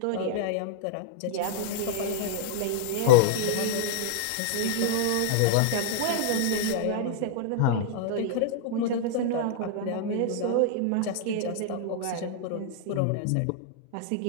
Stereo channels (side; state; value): both; different; correlation -0.01